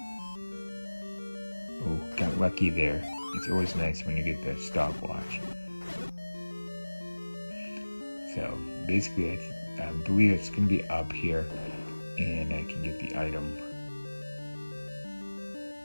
Oh, got lucky there. It's always nice when you get the stopwatch. So basically I believe it's going to be up here, and I can get the item.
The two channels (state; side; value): inverted; both; correlation -1.00